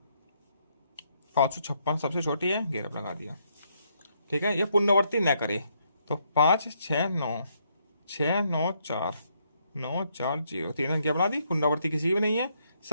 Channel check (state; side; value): inverted; both; correlation -0.74